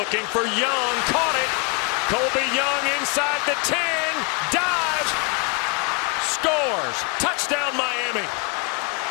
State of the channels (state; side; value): quieter; right; 29.1 dB